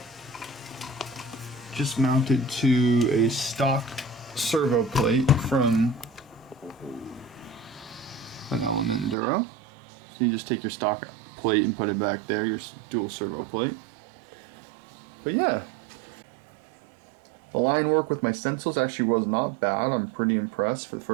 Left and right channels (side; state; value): left; drops out; at 9.2 s